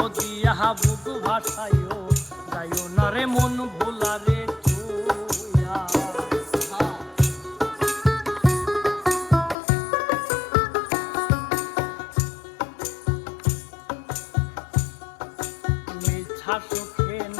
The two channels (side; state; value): right; drops out; at 9.6 s